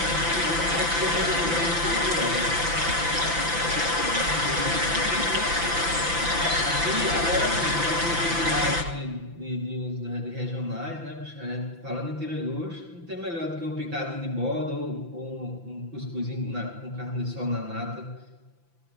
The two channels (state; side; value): late; left; 5.9 ms